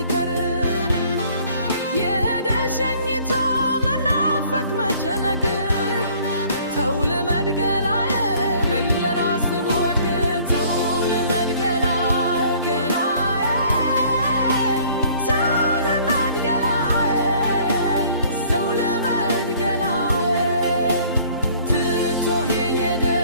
የደሸኝቶ መናፈቅ መጨነቅን ተው ልመድ ገላዬ በል ለራስህ ወግ ተው ልመድ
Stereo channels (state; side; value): inverted; both; correlation -0.55